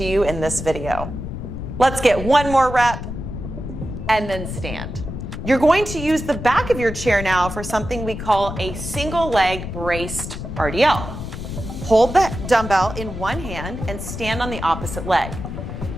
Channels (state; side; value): noise; left; rumble, 7 dB below the sound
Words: you in this video. Let's get one more rep and then stand. You're going to use the back of your chair now for something we call a single leg braced RDL. Hold the dumbbell in one hand and stand on the opposite leg.